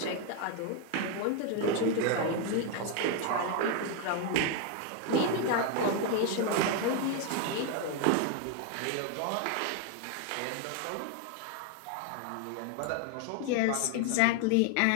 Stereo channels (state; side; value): different; both; correlation 0.01